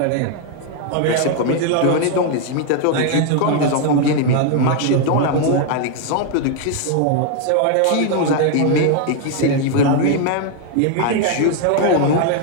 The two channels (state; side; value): different; both; correlation 0.00